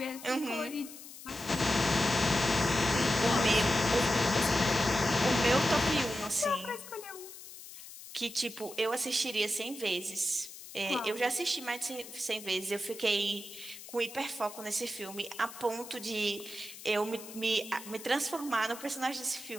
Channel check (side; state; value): left; noise; hiss, 14 dB below the sound